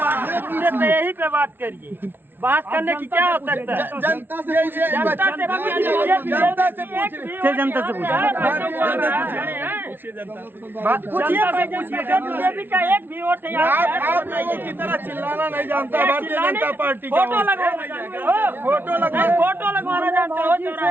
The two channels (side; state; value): left; late; 0.10 ms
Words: यही पे बात करिए, बात करने की क्या आवश्यकता है? जनता से पूछिए, जनता से जनता से पूछिए, बीजेपी का एक भी वोट है। आप लोगों की तरह चिल्लाना नहीं जानता भारतीय जनता पार्टी का। फोटो लगवाना जानते हो?